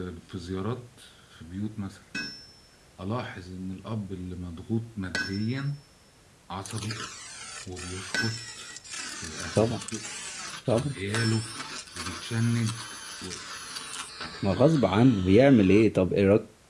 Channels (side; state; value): both; identical; correlation 1.00